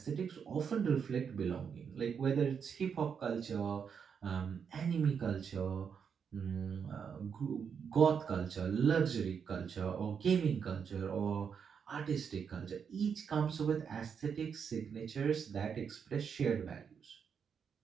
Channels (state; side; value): quieter; left; 6.9 dB